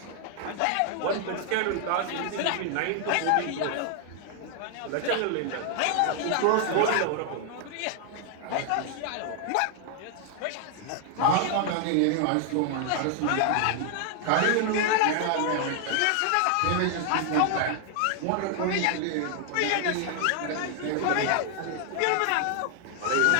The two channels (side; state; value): both; different; correlation 0.00